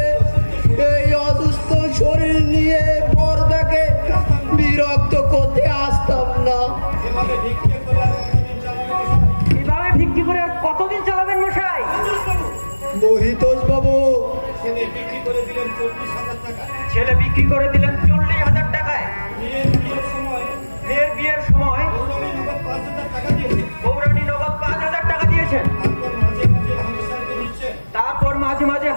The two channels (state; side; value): inverted; both; correlation -1.00